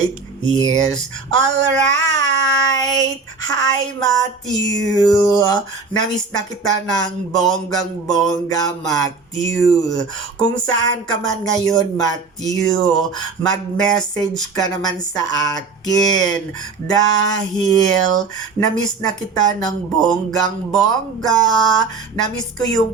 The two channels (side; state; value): left; quieter; 4.5 dB